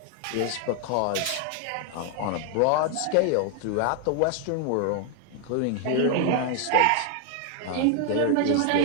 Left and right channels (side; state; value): both; different; correlation 0.00